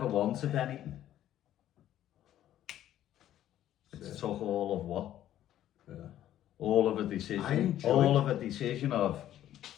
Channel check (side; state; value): right; quieter; 12.2 dB